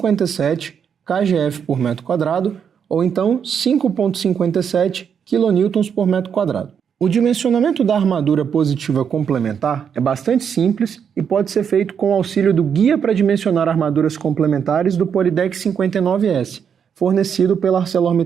kgf por metro quadrado, ou então 5,57 kN por metro quadrado. O dimensionamento da armadura positiva complementar é bastante simples e pode ser feito com o auxílio do Guia para Dimensionar Armaduras Complementares do Polydeck 59S, fornecido pela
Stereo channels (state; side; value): quieter; left; 7.5 dB